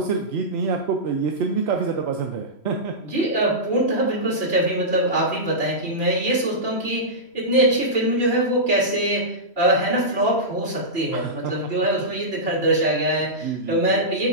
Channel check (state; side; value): late; right; 3.0 ms